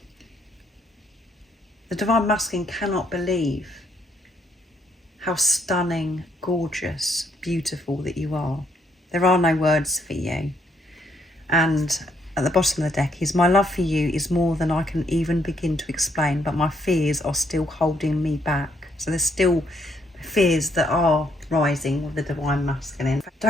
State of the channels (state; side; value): normal; both; correlation 0.72